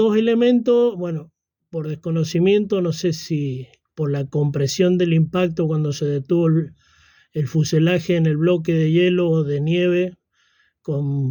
elementos, bueno, por desconocimiento, no sé si por la compresión del impacto cuando se detuvo el fuselaje en el bloque de hielo o de nieve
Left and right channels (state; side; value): identical; both; correlation 1.00